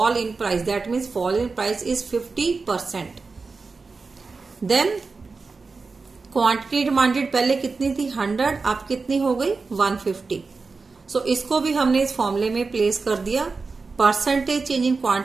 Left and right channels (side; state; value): left; quieter; 4.3 dB